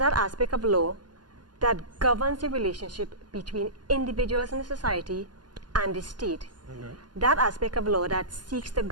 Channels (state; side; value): late; left; 0.70 ms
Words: aspect of law that governs the relationship between individuals in the society and the state. That aspect of law that seeks to